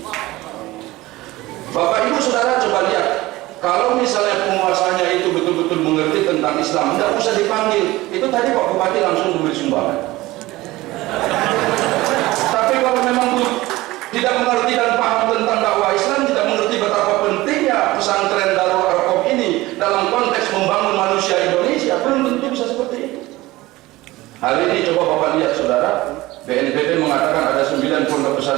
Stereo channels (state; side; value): quieter; left; 18.8 dB